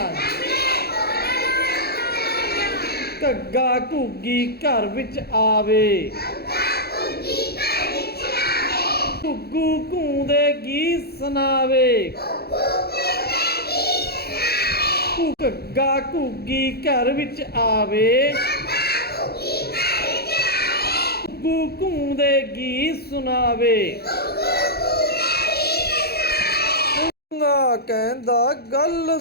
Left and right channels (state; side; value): late; right; 0.46 ms